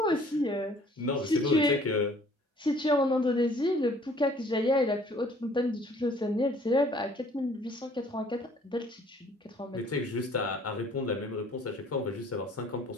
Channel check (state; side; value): normal; both; correlation 0.56